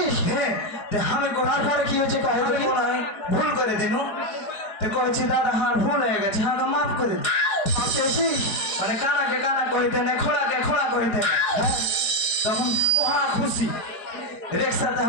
হ্যাঁ আমি তার পরে কি হয়েছে কহে দেখি ভুল করে দিনু তো কইছি দাদা হার ভুল হয়ে গেছে হাঁকা মাফ করে দিন চেয়েছিস মানে কানাকে কানা কইতে নেই খোলাকে খোলা কইতে তখন মহা খুশি রিক্সাতে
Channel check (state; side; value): late; right; 4.8 ms